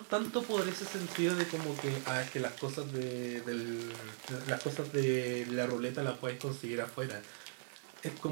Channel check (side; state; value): left; silent; 52 dB below the other